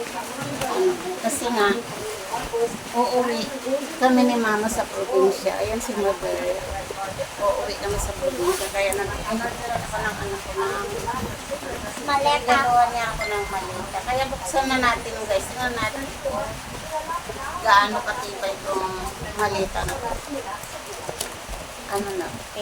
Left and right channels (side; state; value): both; identical; correlation 1.00